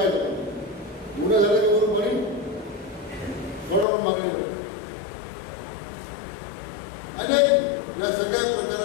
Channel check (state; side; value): drops out; right; at 3.9 s